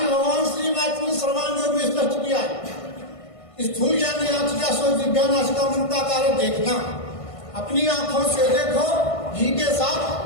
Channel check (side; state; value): right; late; 1.5 ms